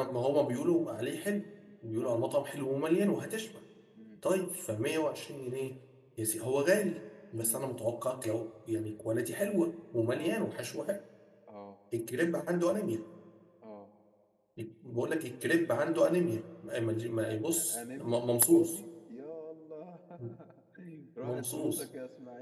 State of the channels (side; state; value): both; identical; correlation 1.00